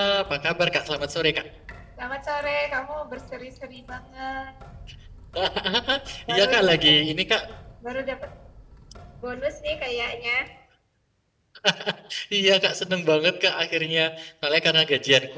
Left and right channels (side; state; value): both; identical; correlation 1.00